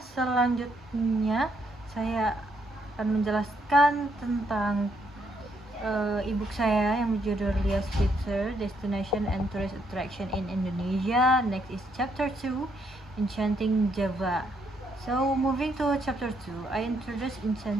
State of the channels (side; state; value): both; normal; correlation 0.74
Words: saya akan menjelaskan tentang e-book saya yang berjudul Lia Spitzer, Destination and Tourist Attraction in Indonesia. Next is Chapter 2, Enchanting Java. So, moving to Chapter 2, I introduce